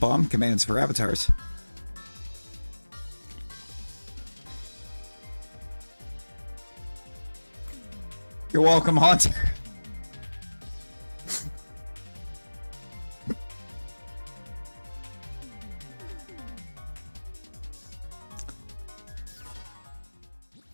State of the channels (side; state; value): both; inverted; correlation -1.00